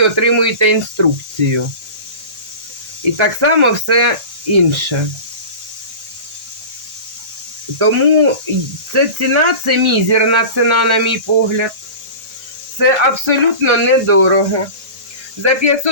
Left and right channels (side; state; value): left; late; 1.6 ms